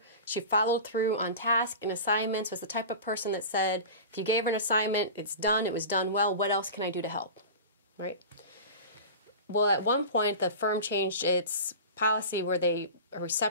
followed through on task and assignments, was the type of person that said, if you gave her an assignment, it's done, it was done well, what else can I do to help, right? Well, at one point, the firm changed its policy where a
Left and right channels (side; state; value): both; inverted; correlation -0.31